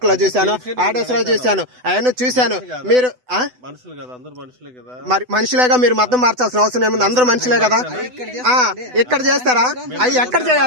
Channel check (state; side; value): late; left; 8.0 ms